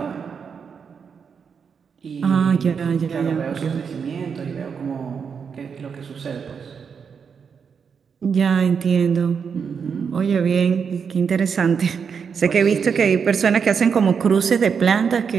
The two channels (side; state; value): left; quieter; 6.4 dB